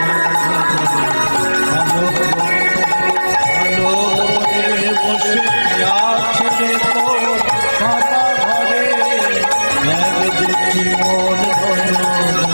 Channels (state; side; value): inverted; both; correlation -1.00